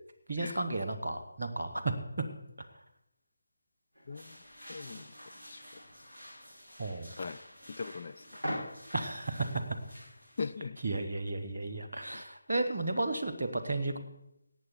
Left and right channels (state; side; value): inverted; both; correlation -0.85